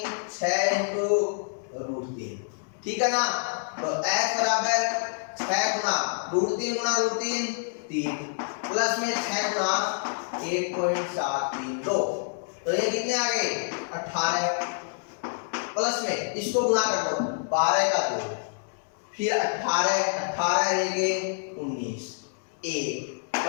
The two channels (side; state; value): right; silent; digital silence